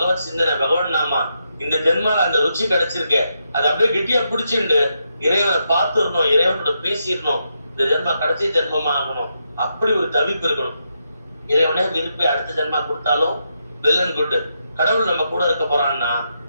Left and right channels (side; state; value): both; inverted; correlation -0.82